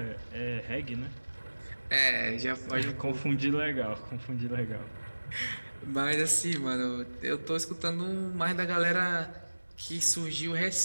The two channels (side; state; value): both; inverted; correlation -1.00